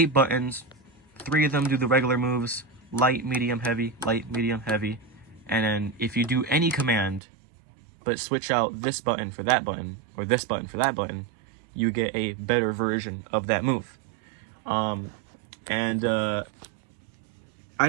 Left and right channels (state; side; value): drops out; left; at 7.2 s